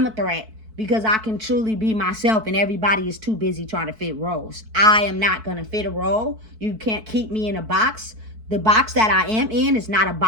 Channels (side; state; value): left; late; 4.6 ms